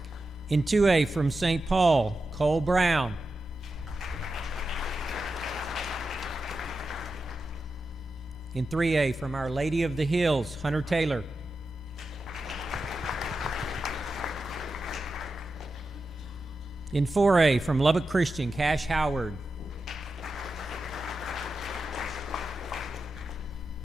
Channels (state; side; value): normal; both; correlation 0.90